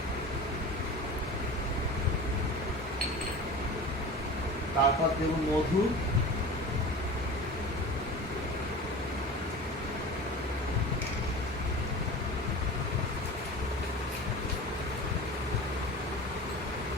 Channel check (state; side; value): normal; both; correlation 0.34